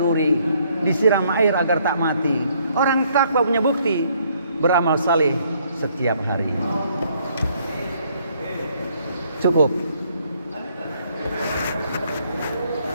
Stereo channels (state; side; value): inverted; both; correlation -0.67